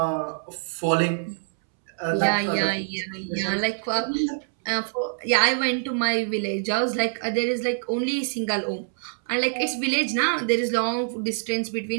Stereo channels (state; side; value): silent; left; 62 dB below the other